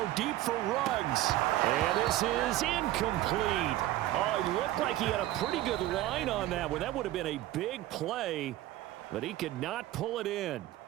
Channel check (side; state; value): left; quieter; 15.2 dB